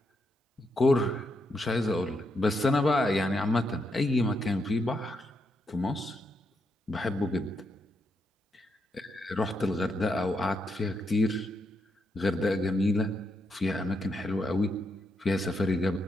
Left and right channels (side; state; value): both; normal; correlation 0.81